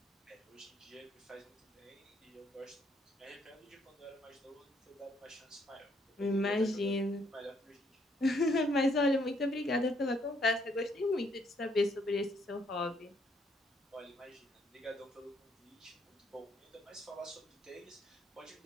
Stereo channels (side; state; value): both; normal; correlation 0.70